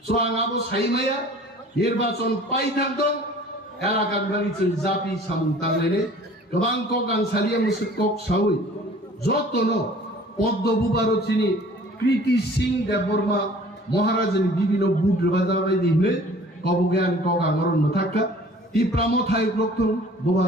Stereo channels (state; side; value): normal; both; correlation 0.49